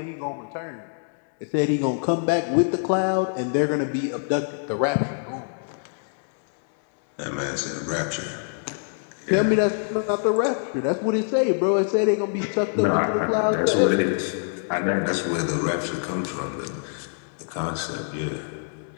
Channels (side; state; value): right; silent; digital silence